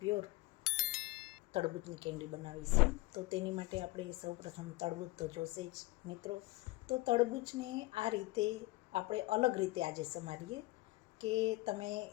તરબૂચની કેન્ડી બનાવીશું. તો તેની માટે આપણે સૌપ્રથમ તરબૂચ તો જોશે જ મિત્રો. તો તરબૂચને આ રીતે આપણે અલગ રીતે આજે સમારીએ કે તમે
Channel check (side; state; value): right; quieter; 20.9 dB